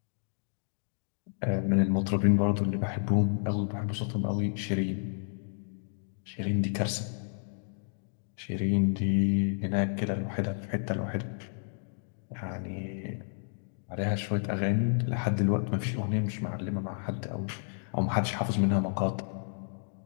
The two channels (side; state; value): right; silent; digital silence